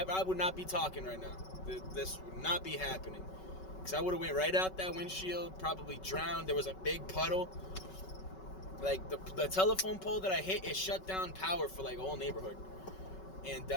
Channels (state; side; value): late; right; 5.3 ms